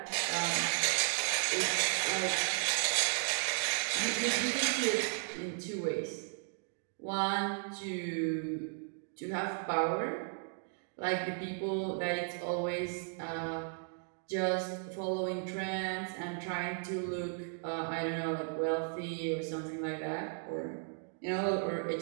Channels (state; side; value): silent; left; 54 dB below the other